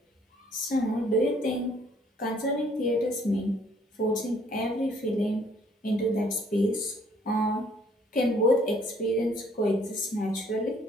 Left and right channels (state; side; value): normal; both; correlation 0.62